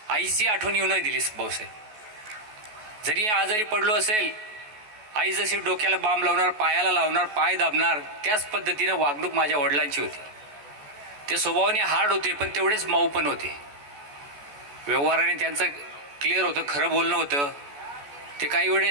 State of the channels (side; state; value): left; late; 14 ms